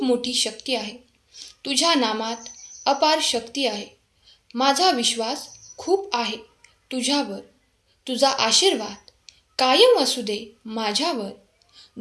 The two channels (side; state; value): both; identical; correlation 1.00